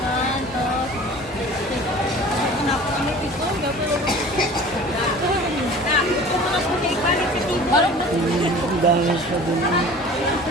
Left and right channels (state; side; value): normal; both; correlation 0.43